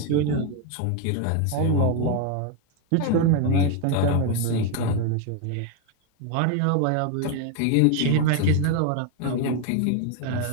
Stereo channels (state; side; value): different; both; correlation 0.01